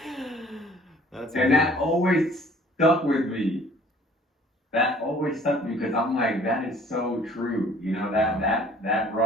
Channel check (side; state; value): both; normal; correlation 0.54